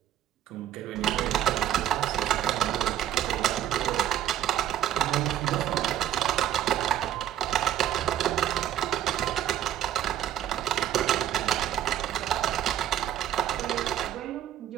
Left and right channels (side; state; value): left; quieter; 11.1 dB